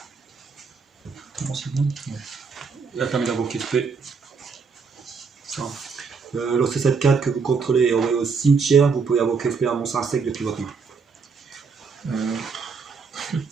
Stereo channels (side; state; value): left; quieter; 5.2 dB